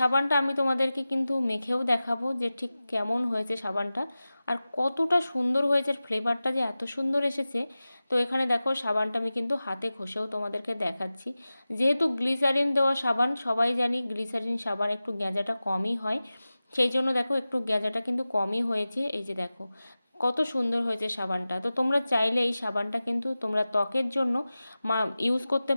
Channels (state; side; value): inverted; both; correlation -0.96